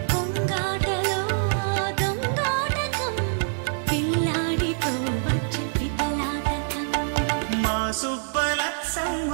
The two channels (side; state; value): left; silent; digital silence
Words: కొంగాటలో దొంగాటకం, పిల్లాడితో వచ్చే పితలాటకం. మా